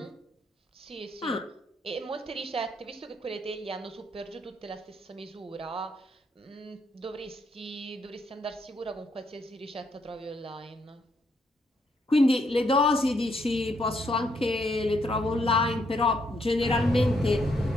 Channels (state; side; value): normal; both; correlation 0.74